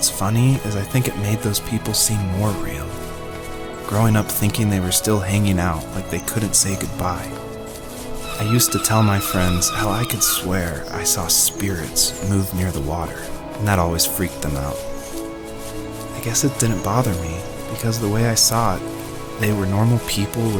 funny is I think it made those people seem more real, growing up thinking they were still hanging out like they couldn't say goodbye. I used to tell my friends how I could swear I saw spirits move near the water, and that always freaked them out. I guess it didn't bother me, because the way I saw it, they were normal people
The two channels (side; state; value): both; identical; correlation 1.00